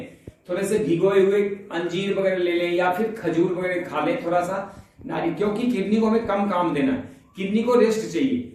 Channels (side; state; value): both; identical; correlation 1.00